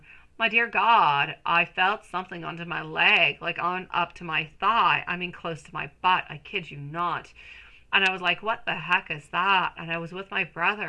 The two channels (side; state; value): both; identical; correlation 1.00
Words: My dear God, I felt something under my leg, like on up to my thigh. I mean, close to my butt. I kid you not. And I was like, what the heck is that? And I was with my